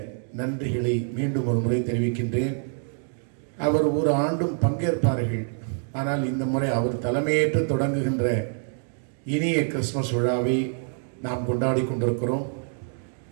நன்றிகளை மீண்டும் ஒரு முறை தெரிவிக்கின்றேன். அவர் ஒரு ஆண்டும் பங்கேற்பார்கள், ஆனால் இந்த முறை அவர் தலைமையேற்று தொடங்குகின்ற இனிய கிறிஸ்துமஸ் விழாவை நாம் கொண்டாடி கொண்டிருக்கிறோம்.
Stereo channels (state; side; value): silent; left; 61 dB below the other